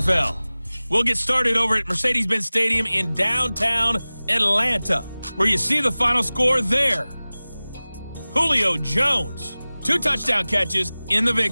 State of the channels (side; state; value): both; inverted; correlation -0.99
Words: We'll get started over at Mercedes-Benz Stadium in downtown Atlanta, where you see the final score there. Julio Jones, 2 touchdown catches in the